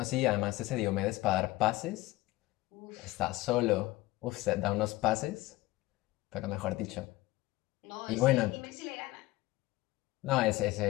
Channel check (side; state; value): right; quieter; 18.9 dB